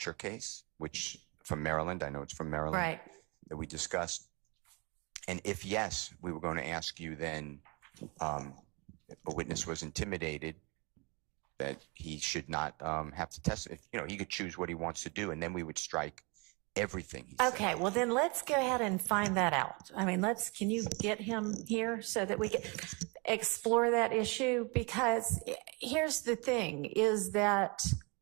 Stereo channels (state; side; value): quieter; left; 29.9 dB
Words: case, which from Maryland, I know it's from Maryland. Right. that we discussed? And if yes, we were going to ask you then, if a witness was intimidated, that he should not have to testify. He could choose what he wants to do, and then we would strike everything he said. Okay, well then let's go ahead and find that out. I mean, can you get him here so that we can explore that issue? Because here's the thing is that,